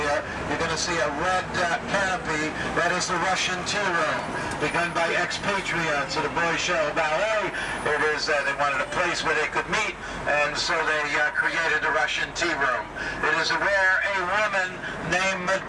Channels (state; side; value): identical; both; correlation 1.00